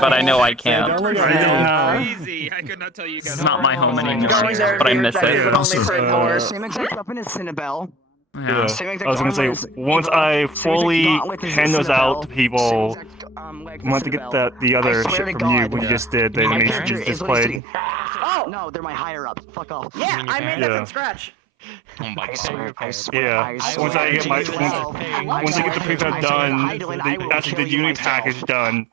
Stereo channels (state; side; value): drops out; left; at 17.6 s